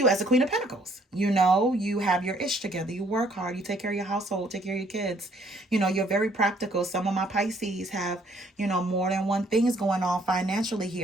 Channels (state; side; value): normal; both; correlation 0.64